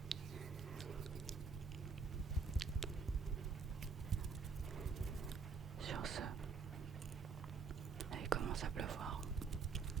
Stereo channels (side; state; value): left; quieter; 5.2 dB